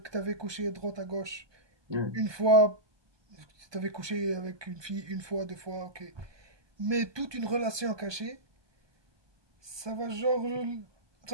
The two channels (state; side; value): late; left; 1.2 ms